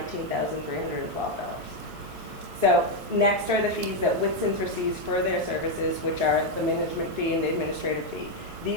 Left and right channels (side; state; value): both; normal; correlation 0.03